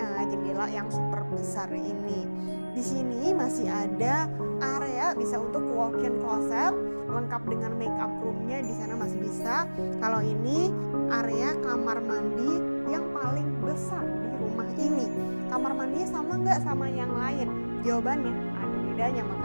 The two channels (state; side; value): inverted; both; correlation -1.00